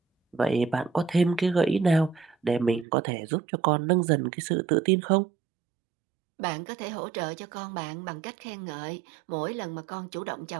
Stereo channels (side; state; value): left; drops out; at 2.9 s